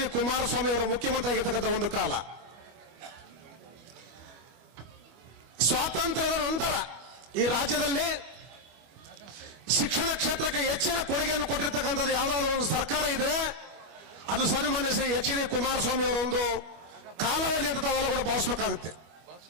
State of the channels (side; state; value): left; late; 25 ms